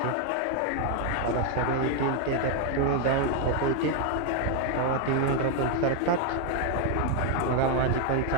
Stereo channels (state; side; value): different; both; correlation 0.00